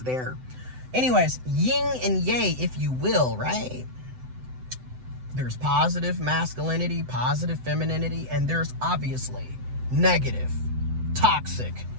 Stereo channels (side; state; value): left; late; 7.9 ms